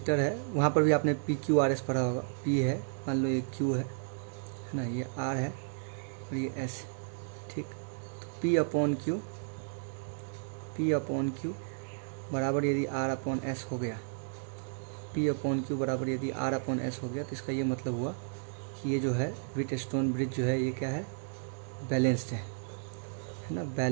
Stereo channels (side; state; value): left; silent; digital silence